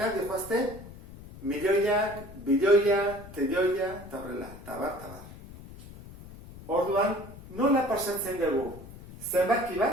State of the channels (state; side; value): noise; left; rumble, 16 dB below the sound